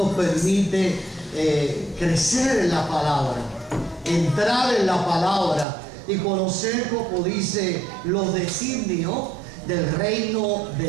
permite crecer en la palabra, entrar en la palabra y conocer, como dice, los designios del reino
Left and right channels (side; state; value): left; drops out; at 5.7 s